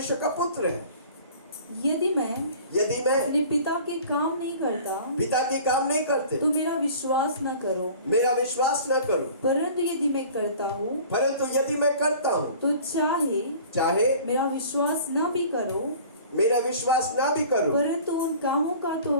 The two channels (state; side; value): inverted; both; correlation -0.45